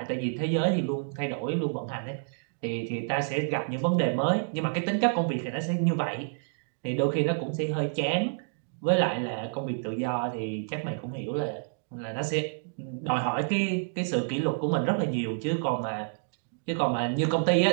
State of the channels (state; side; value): silent; left; digital silence